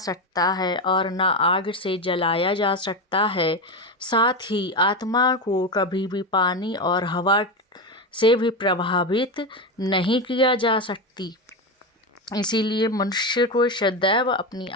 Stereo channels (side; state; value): both; normal; correlation 0.15